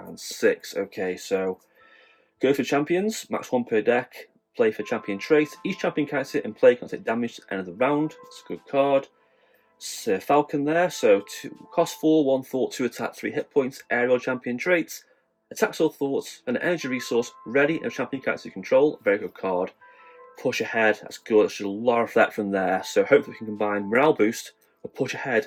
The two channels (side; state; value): both; identical; correlation 1.00